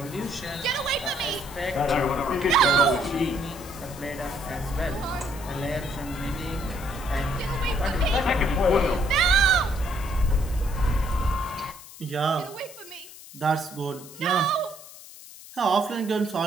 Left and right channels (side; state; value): left; noise; hiss, 17 dB below the sound